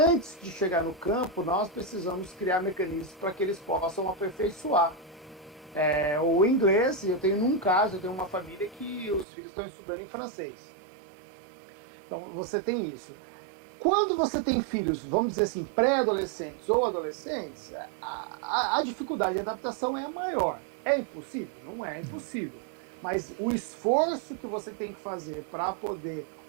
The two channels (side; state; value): left; drops out; at 9.2 s